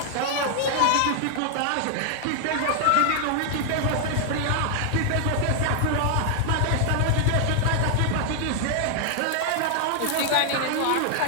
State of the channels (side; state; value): both; different; correlation 0.00